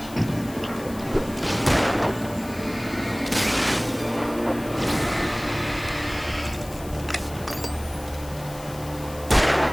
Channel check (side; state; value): left; noise; hiss, 17 dB below the sound